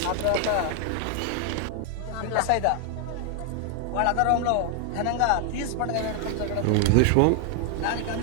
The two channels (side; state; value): both; different; correlation 0.00